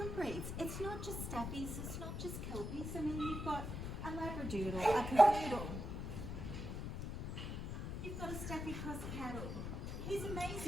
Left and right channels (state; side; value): noise; left; rumble, 4 dB below the sound